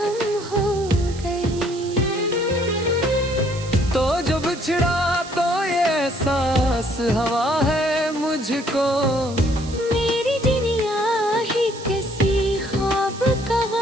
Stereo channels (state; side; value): noise; right; hiss, 16 dB below the sound